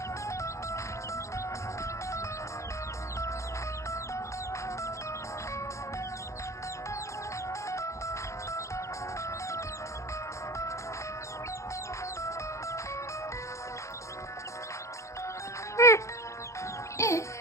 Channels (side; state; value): right; late; 0.14 ms